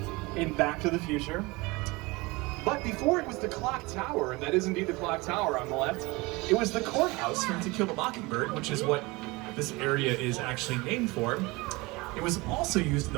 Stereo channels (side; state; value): left; quieter; 23.7 dB